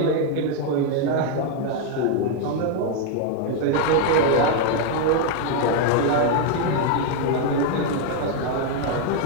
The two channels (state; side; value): different; both; correlation 0.00